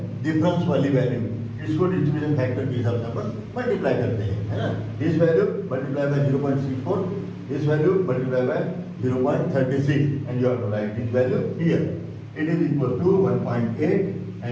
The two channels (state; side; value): identical; both; correlation 1.00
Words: डिफरेंस वाली वैल्यू, इसको डिस्ट्रीब्यूशन फैक्टर के हिसाब से अपन मल्टीप्लाई करते हैं, है ना। This value multiply by 0.64, this value multiply by 0.36 and you have to write this value here. It is equal to 1.8